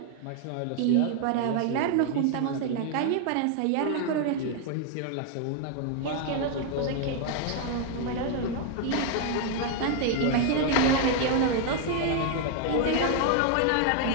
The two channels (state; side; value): different; both; correlation 0.00